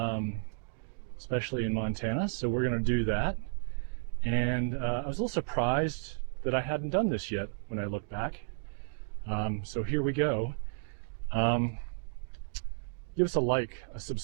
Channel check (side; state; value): left; silent; digital silence